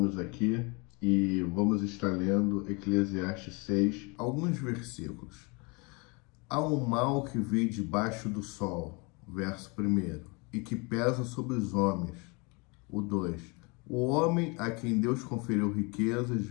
aqui e vamos estar lendo Eclesiastes 6, alguns versículos. Há um mal que vem debaixo do sol, verso 1, e que pesa sobre os homens. O 2. O homem a quem Deus conferiu riquezas,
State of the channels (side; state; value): right; quieter; 29.5 dB